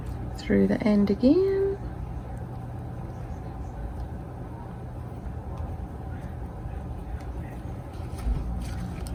through the end again,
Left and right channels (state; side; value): identical; both; correlation 1.00